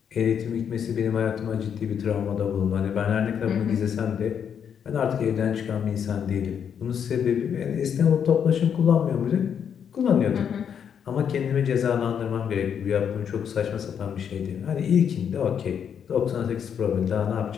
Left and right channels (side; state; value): right; quieter; 7.9 dB